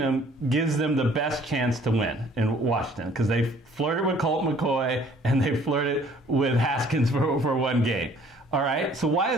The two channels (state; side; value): normal; both; correlation 0.57